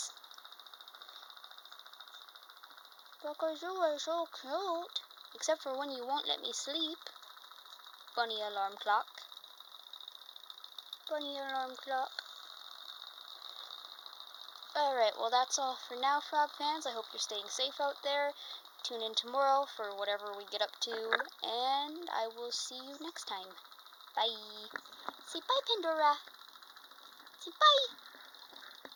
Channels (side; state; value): both; identical; correlation 1.00